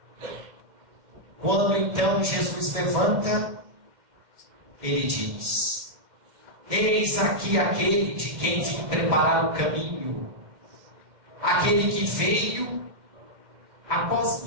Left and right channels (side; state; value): left; late; 2.1 ms